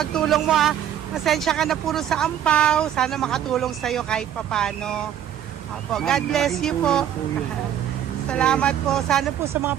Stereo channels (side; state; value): left; quieter; 10.2 dB